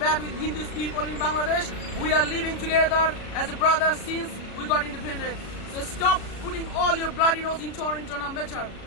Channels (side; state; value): right; late; 36 ms